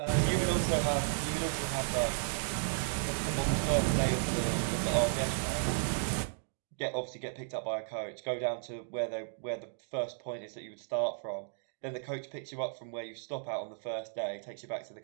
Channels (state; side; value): silent; left; digital silence